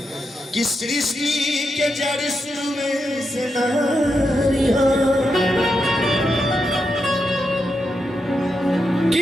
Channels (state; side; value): normal; both; correlation 0.85